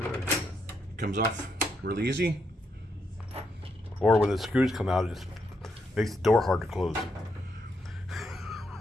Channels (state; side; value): normal; both; correlation 0.79